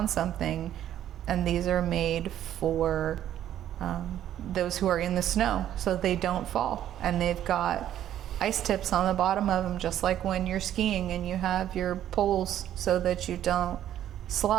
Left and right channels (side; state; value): left; quieter; 11.4 dB